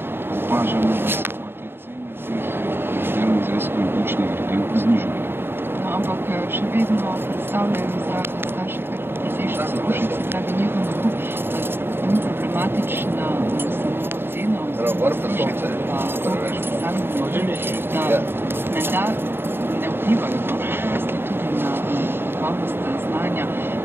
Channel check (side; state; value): left; late; 0.11 ms